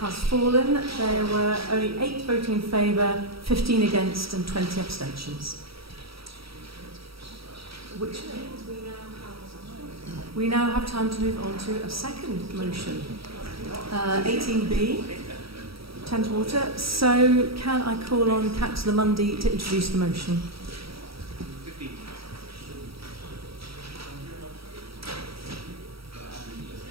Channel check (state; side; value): late; left; 0.76 ms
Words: fallen. There were only 8 voting in favour, 15 against and 20 abstentions. Which means we now have time to move on to a second motion. 18B, Thames Water. So can I call on Councillor Mundy to introduce the motion?